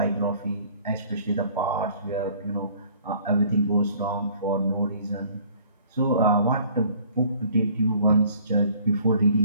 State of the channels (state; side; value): inverted; both; correlation -0.55